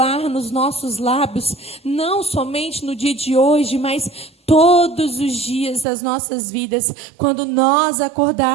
nos nossos lábios, não somente no dia de hoje, mas todos os dias das nossas vidas, quando nós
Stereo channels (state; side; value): drops out; left; at 5.9 s